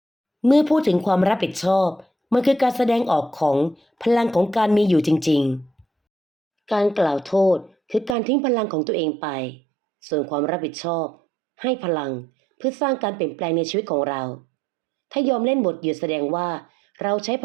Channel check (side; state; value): left; drops out; at 8.2 s